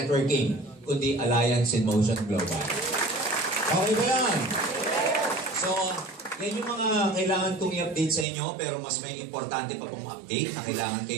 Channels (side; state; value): left; drops out; at 8.2 s